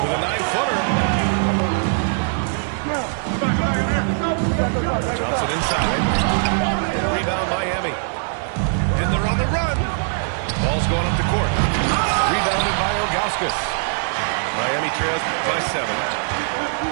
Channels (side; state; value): left; silent; 65 dB below the other